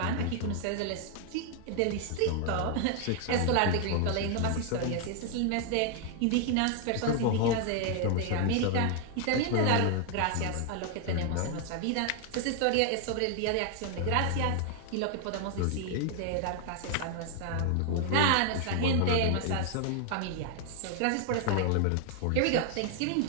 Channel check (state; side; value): different; both; correlation 0.00